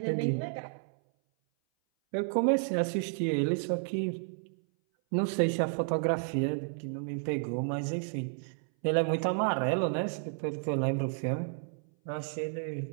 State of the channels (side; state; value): left; silent; 57 dB below the other